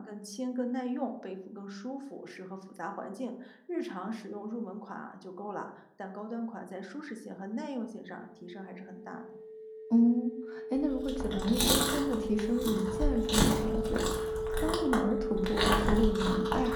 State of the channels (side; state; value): both; identical; correlation 1.00